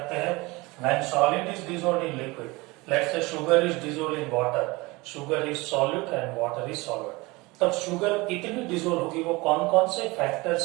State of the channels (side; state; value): left; quieter; 23.4 dB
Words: हैं when solid is dissolved in liquid, let's say sugar is dissolved in water, sugar is solute and water is solvent, तब शुगर कितनी डिसॉल्व होगी वो कौन कौन से फैक्टर्स